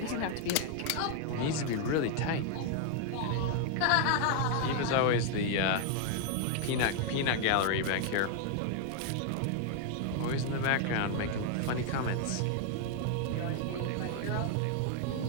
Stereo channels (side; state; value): both; different; correlation 0.00